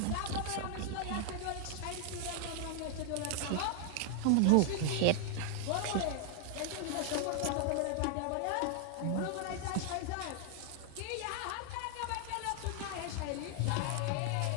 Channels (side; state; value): both; different; correlation 0.00